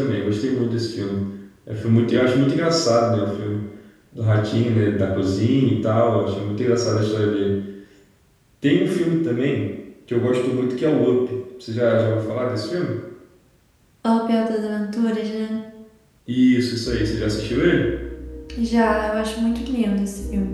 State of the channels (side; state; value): both; identical; correlation 1.00